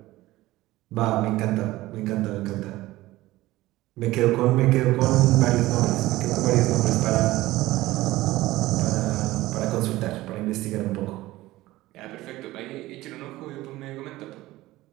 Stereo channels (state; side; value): quieter; left; 17.6 dB